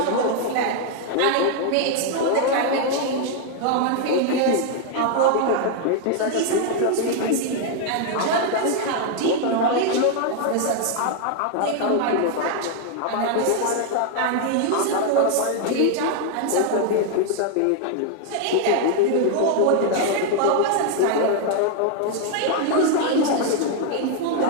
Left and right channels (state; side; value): different; both; correlation 0.00